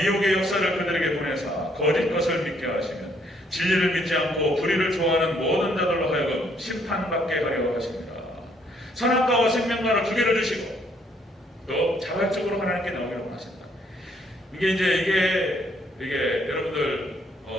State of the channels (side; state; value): both; normal; correlation 0.68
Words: 미혹의 역사를 그들에게 보내사 거짓 것을 믿게 하시면 진리를 믿지 않고 불의를 좋아하는 모든 자들로 하여금 심판받게 하려 하십니다. 선악과와 생명과를 두 개를 주시고 또 자발적으로 하나님께 나오기를 원하신다. 이게 여러분들